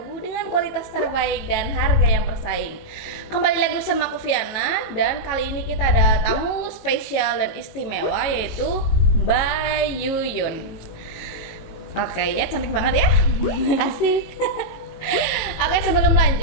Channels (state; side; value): late; right; 19 ms